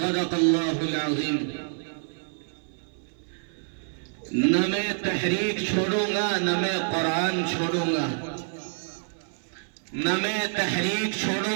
الله العظيم نہ میں تحریک چھوڑوں گا نہ میں قرآن چھوڑوں گا نہ میں تحریک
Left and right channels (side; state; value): left; silent; 58 dB below the other